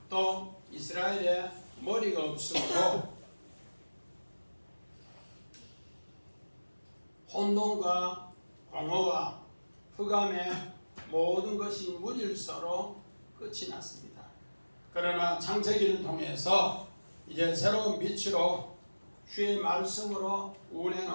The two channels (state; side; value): inverted; both; correlation -1.00